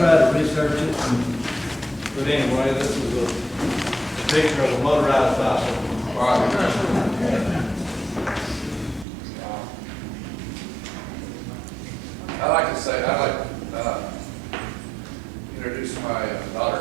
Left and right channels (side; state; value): left; drops out; at 9.1 s